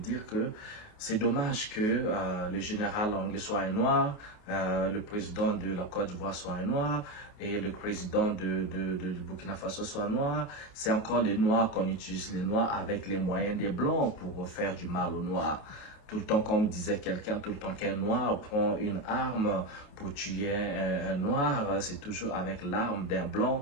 que c'est dommage que le général anglais soit un noir, le président de la Côte d'Ivoire soit un noir et le président du Burkina Faso soit noir. C'est encore les noirs qu'on utilise, les noirs avec les moyens des blancs pour faire du mal aux noirs. Tout le temps, comme disait quelqu'un, tout le temps qu'un noir prend une arme pour tuer un noir, c'est toujours avec l'arme d'un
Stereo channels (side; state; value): right; late; 28 ms